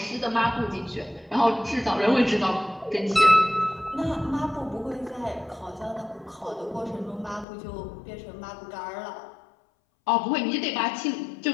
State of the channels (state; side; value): drops out; right; at 7.5 s